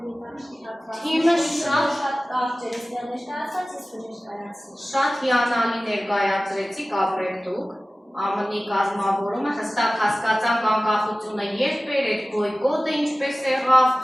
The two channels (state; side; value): normal; both; correlation 0.97